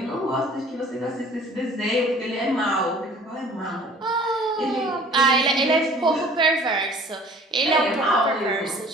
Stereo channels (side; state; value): both; normal; correlation 0.49